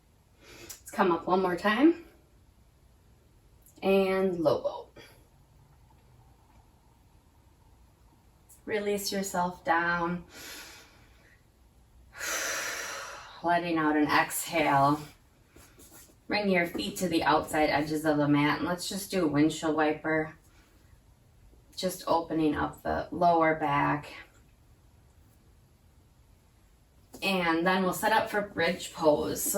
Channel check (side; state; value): both; identical; correlation 1.00